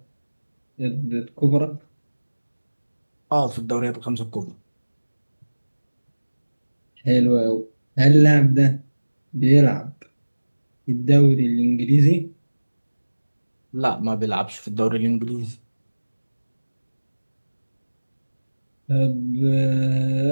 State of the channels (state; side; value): inverted; both; correlation -1.00